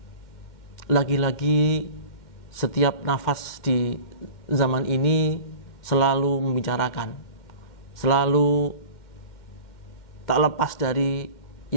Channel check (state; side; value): late; right; 2.1 ms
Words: lagi-lagi setiap nafas di zaman ini selalu membicarakan, selalu tak lepas dari